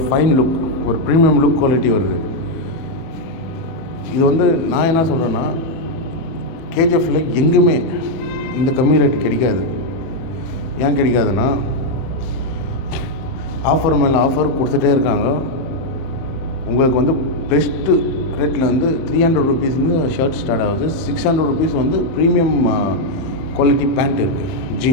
ஃபைன் லுக், ஒரு ப்ரீமியம் லுக் குவாலிட்டி வருது. இது வந்து நான் என்ன சொல்கிறேன்னா, கேஜிஎஃப்பில் எங்குமே இந்த கம்மி ரேட்டு கிடைக்காது. ஏன் கிடைக்காதுன்னா, ஆஃபர் மேலே ஆஃபர் கொடுத்துட்டே இருக்காங்க. உங்களுக்கு வந்து பெஸ்ட்டு ரேட்டில் வந்து 300 ருபீஸ்லேருந்து ஷர்ட் ஸ்டார்ட் ஆகுது. 600 ருபீஸ் வந்து ப்ரீமியம் குவாலிட்டி பேண்ட் இருக்குது,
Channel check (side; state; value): right; late; 31 ms